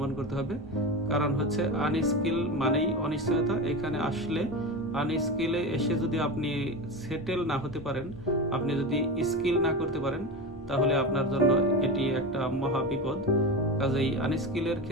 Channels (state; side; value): normal; both; correlation 0.23